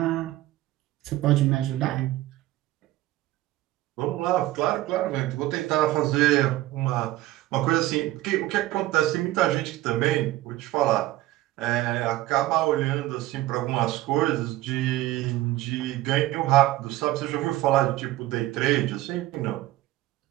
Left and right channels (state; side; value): quieter; left; 16.5 dB